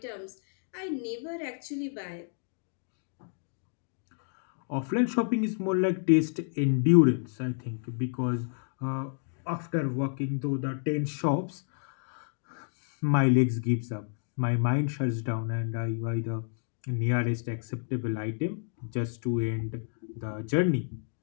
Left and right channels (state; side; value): silent; right; 58 dB below the other